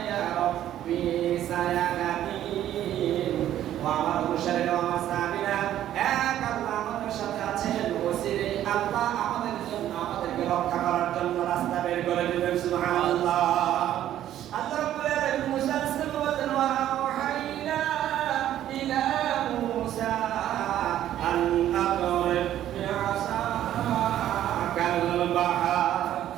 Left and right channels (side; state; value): left; quieter; 12.0 dB